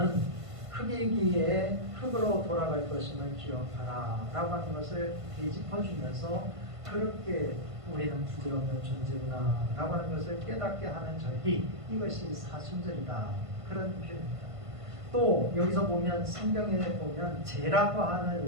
흙이기에 흙으로 돌아갈 것임을 기억하라 라고 하는 것을 되짚어주면서 그렇게 우리는 부질없는 존재구나 라고 하는 것을 깨닫게 하는 절기, 이것이 사순절이다 그런 표현입니다. 또 여기서 보면 성경에 보면 죄라고 하는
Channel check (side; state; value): left; late; 1.5 ms